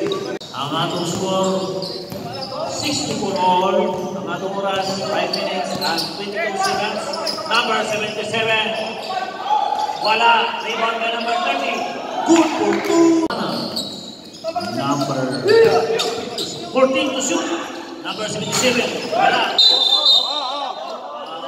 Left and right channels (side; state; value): both; identical; correlation 1.00